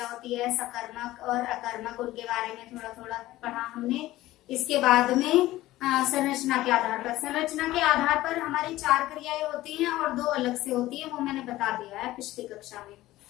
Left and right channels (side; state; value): right; quieter; 16.4 dB